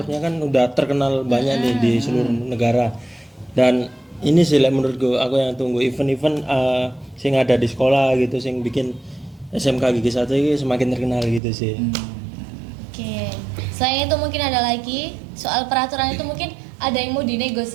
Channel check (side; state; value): left; drops out; at 11.4 s